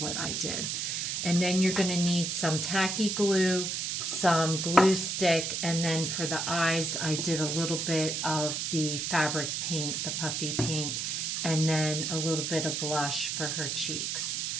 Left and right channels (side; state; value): right; noise; hiss, 1 dB below the sound